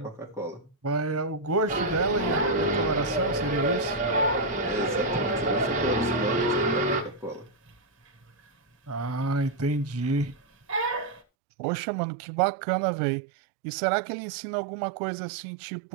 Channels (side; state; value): left; drops out; at 11.2 s